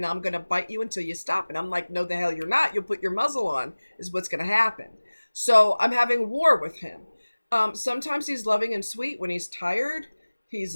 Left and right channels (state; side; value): inverted; both; correlation -1.00